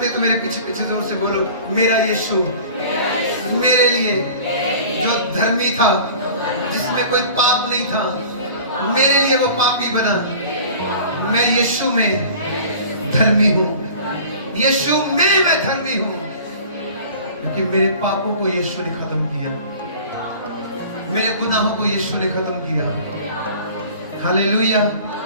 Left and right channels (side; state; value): both; inverted; correlation -0.43